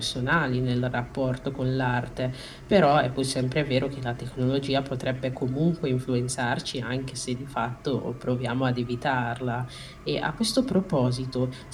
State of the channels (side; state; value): both; identical; correlation 1.00